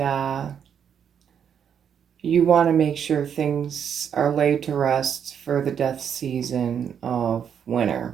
you want to make sure things are laid to rest for the death season of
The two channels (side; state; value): left; quieter; 8.1 dB